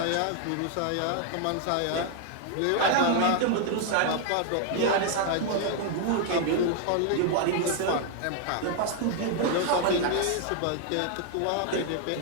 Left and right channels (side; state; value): both; different; correlation 0.00